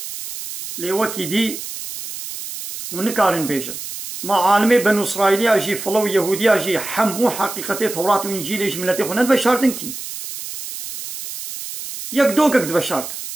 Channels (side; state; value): right; noise; hiss, 9 dB below the sound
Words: ليوكي دي ونكارن بيجن ما عالمي بنو إسرائيلية جي فلو يهودية جي حمو حقيقتي توراة وإنجيل جملتي خونات بشارتن كي يك دوكك دبشارت